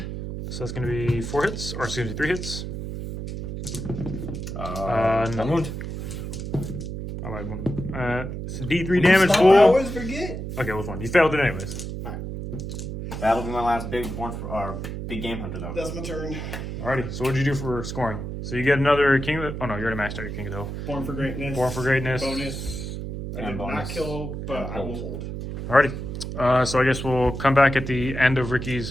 So that's going to be 4 hits, or excuse me, 3 hits. No. 1 wound. I lied, one. It's D3 damage, I fool. always forget. Okay, what's one? You failed it anyways. That'll be my last big game hunter, though. That's my turn. Alrighty, so what'd you do for scoring? So you get another King of the... Oh no, you already maxed out your King of the Hill. Born for greatness. Born for Greatness. Bonus. I And did not bonus. kill, but And I will hold. hold. Alrighty. So I guess we'll come back at the end of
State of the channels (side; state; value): right; noise; hum, 6 dB below the sound